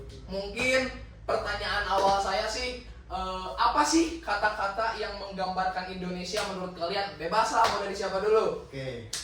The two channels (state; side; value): identical; both; correlation 1.00